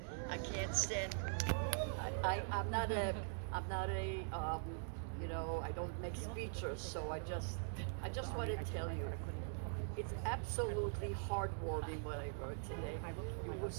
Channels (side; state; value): left; silent; digital silence